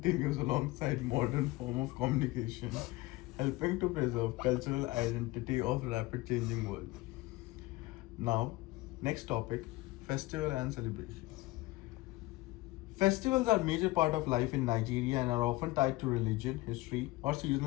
alongside modern form of communication, helping to preserve cultural identity of rapid changing world. Now, next topic, festival and celebrations. Festivals are a major part of life in Nigeria and are often tied to religion, history, or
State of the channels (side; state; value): right; quieter; 19.5 dB